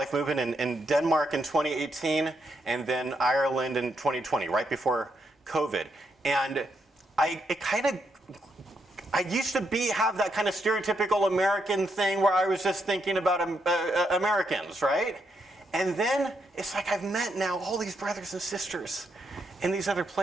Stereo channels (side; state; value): both; normal; correlation 0.79